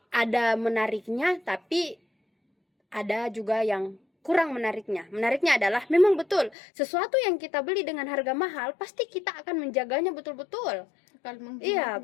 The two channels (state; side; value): drops out; right; at 6.6 s